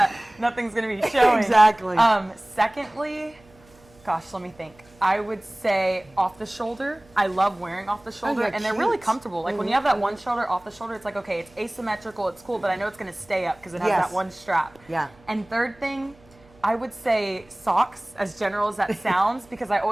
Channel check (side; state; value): right; noise; hum, 28 dB below the sound